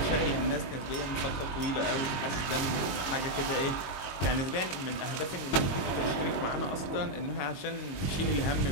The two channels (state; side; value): late; right; 22 ms